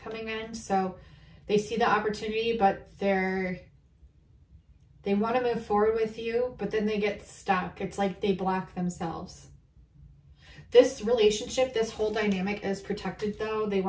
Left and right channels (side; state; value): both; identical; correlation 1.00